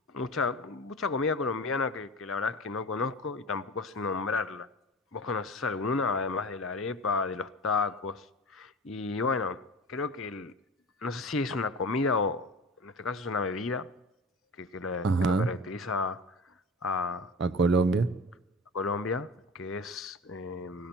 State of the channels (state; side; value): normal; both; correlation 0.34